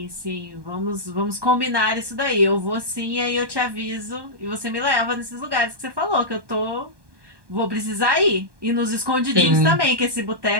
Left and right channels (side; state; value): left; late; 1.2 ms